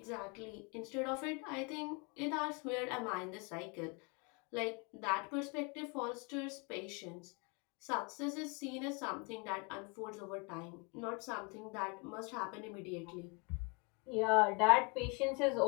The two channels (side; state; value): right; quieter; 30.5 dB